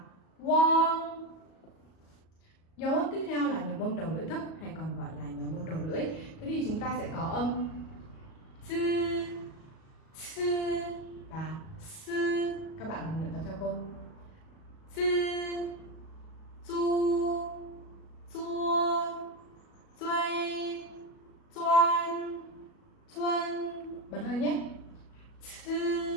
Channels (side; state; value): right; late; 37 ms